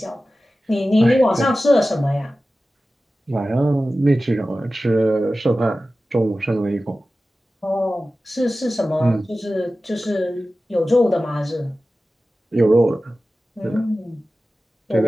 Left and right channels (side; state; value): both; normal; correlation 0.95